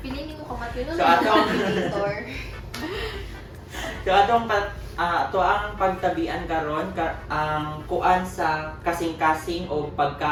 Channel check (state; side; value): identical; both; correlation 1.00